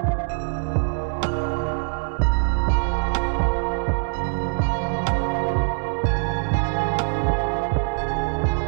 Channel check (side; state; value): left; silent; digital silence